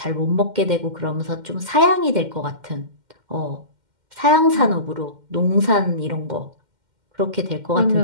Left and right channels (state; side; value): late; left; 2.1 ms